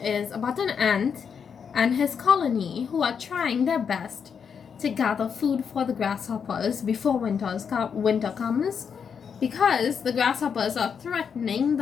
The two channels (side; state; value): right; quieter; 6.8 dB